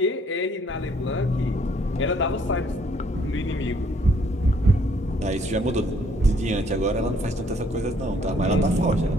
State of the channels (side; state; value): both; normal; correlation 0.64